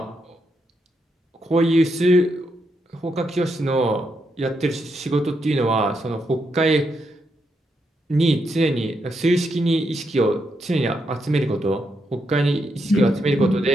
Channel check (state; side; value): normal; both; correlation 0.81